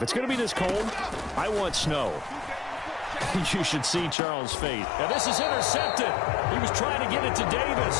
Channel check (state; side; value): drops out; right; at 4.2 s